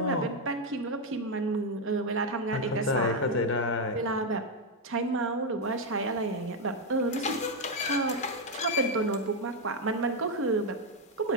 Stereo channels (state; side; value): normal; both; correlation 0.03